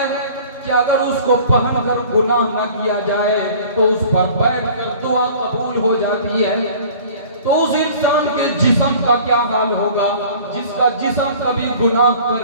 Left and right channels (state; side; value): inverted; both; correlation -0.47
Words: کہ اگر اس کو پہن کر گناہ نہ کیا جائے تو اس پر بیٹھ کر دعا قبول ہو جاتی ہے، تو اس انسان کے جسم کا کیا حال ہوگا جس کا جسم کبھی گناہ